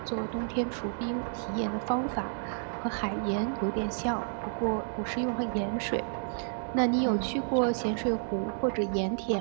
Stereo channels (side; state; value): left; silent; digital silence